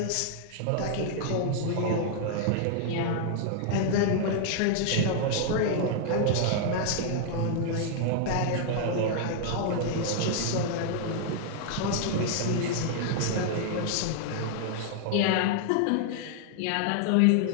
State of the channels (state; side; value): different; both; correlation 0.00